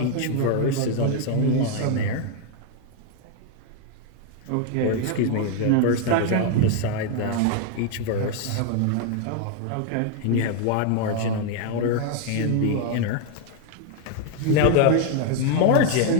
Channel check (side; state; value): both; different; correlation 0.00